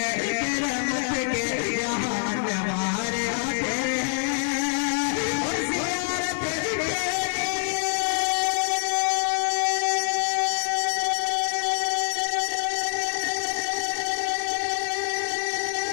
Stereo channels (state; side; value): silent; right; digital silence